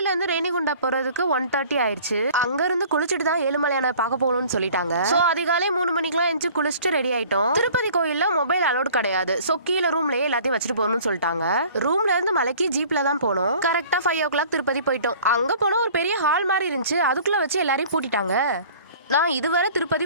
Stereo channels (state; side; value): inverted; both; correlation -0.49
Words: இருந்து ரேணிகுண்டா போறதுக்கு 1:30 ஆயிடுச்சு. அங்க இருந்து குளிச்சுட்டு தான் ஏழுமலையான பார்க்க போகணும்னு சொல்லிட்டாங்க. சோ அதிகாலை 3 மணிக்கெல்லாம் எஞ்சி குளிச்சுட்டு ரெடி ஆயிட்டோம். திருப்பதி கோயில்ல மொபைல் அலோட் கிடையாது. சோ கீழே ரூம்லயே எல்லாத்தையும் வச்சுட்டு போகணும்னு சொல்லிட்டாங்க. ரூம்ல இருந்து மலைக்கு ஜீப்ல தான் போனோம். கரெக்டா 5 o'clock திருப்பதி போயிட்டோம். அங்க போனா ஒரு பெரிய ஹால் மாதிரி இருந்துச்சு. அதுக்குள்ள வச்சு எல்லாரையும் பூட்டிட்டாங்க. நான் இதுவரை திருப்பதி